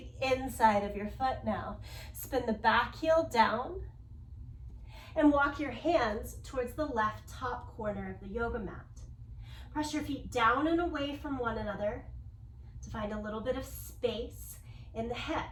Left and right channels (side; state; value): both; identical; correlation 1.00